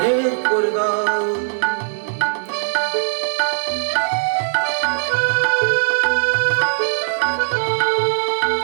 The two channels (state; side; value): silent; left; 66 dB below the other